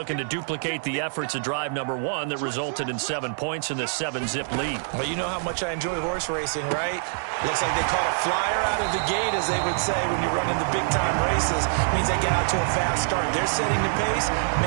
to duplicate the efforts of drive number 1 that resulted in 7 points in the 7-zip lead. Well, you know how much I enjoy horse racing, right? Looks like they caught a flyer out of the gate, as they would say when you're running the big-time races. Means they get out to a fast start. They're setting the pace,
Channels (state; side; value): silent; left; digital silence